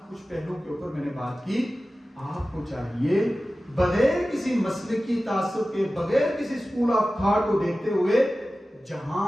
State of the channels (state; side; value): normal; both; correlation 0.95